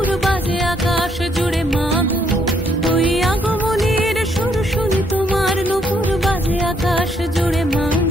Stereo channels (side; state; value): both; normal; correlation 0.70